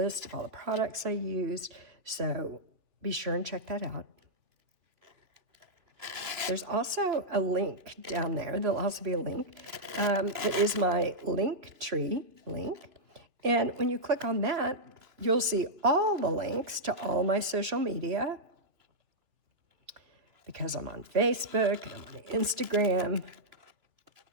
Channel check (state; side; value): late; left; 3.1 ms